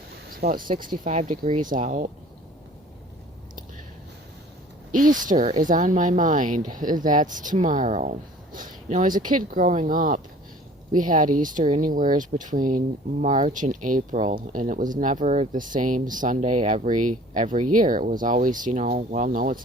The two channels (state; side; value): normal; both; correlation 0.49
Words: It's about 65 degrees out. Easter is on my mind. That's tomorrow. As a kid growing up, we had Easter anywhere between March and April, and it was never the same Sunday every year. It was always, well, no,